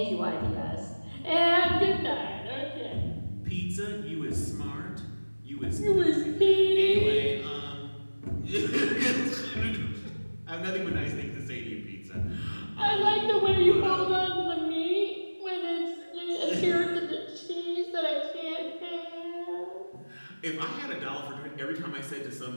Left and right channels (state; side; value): inverted; both; correlation -1.00